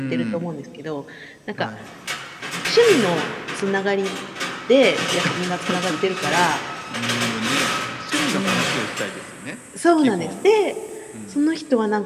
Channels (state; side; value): identical; both; correlation 1.00